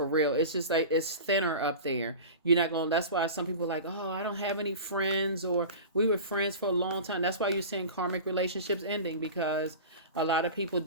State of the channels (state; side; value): inverted; both; correlation -0.33